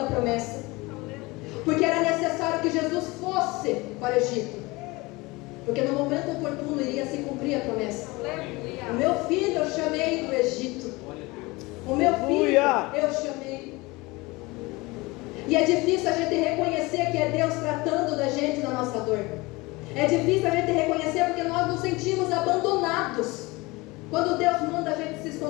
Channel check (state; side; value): quieter; right; 23.2 dB